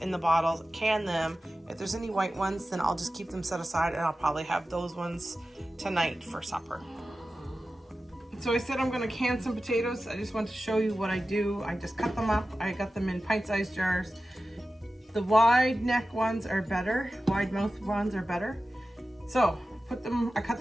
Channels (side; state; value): both; normal; correlation 0.94